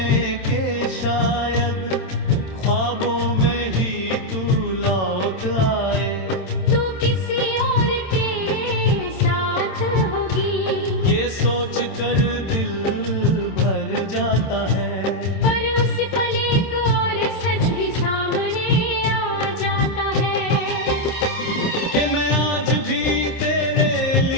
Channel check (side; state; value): right; late; 27 ms